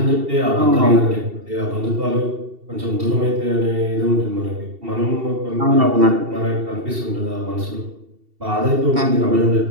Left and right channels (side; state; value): left; late; 2.7 ms